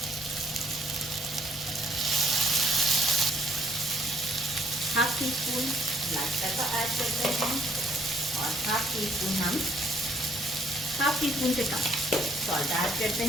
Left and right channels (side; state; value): both; normal; correlation 0.66